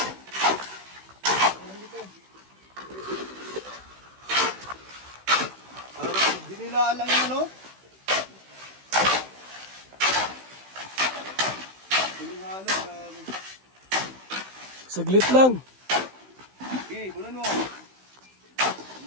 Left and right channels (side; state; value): left; late; 16 ms